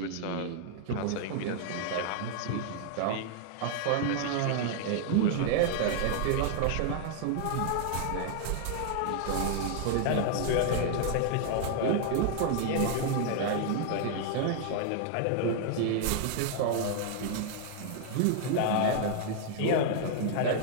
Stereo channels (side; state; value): both; different; correlation 0.00